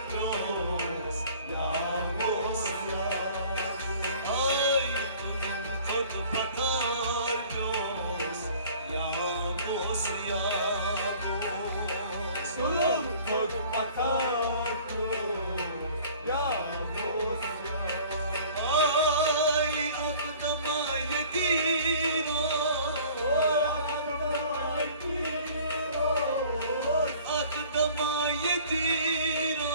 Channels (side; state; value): both; inverted; correlation -0.49